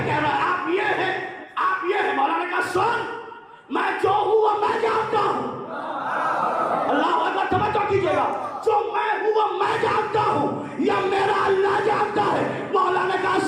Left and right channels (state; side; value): identical; both; correlation 1.00